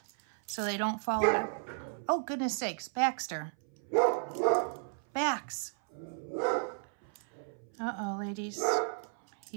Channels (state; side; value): silent; left; 55 dB below the other